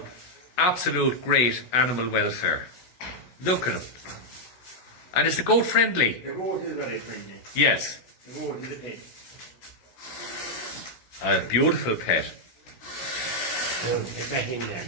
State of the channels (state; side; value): late; right; 16 ms